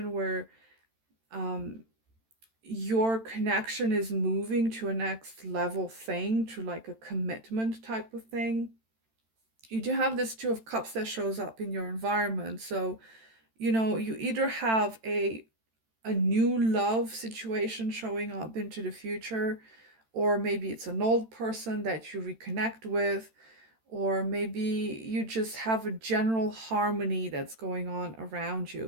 where um, your connection is moving to a next level thing, to like a commitment type of thing. You do have this Two of Cups that shows up in your environment. So, you either have a new love situation showing up into the future, or maybe it's an old person that you reconnect with, or maybe you just have a general harmony that's going on around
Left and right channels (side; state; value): left; late; 13 ms